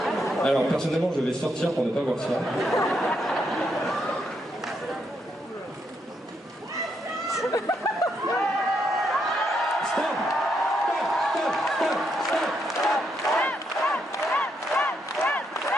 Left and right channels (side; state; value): both; normal; correlation 0.78